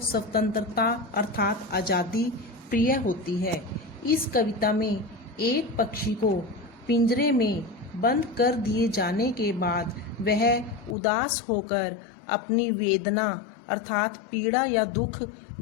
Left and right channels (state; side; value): drops out; right; at 11.0 s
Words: स्वतंत्रता अर्थात आज़ादी प्रिय होती है। इस कविता में एक पक्षी को पिंजरे में बंद कर दिए जाने के बाद वह उदास होकर अपनी वेदना अर्थात पीड़ा या दुख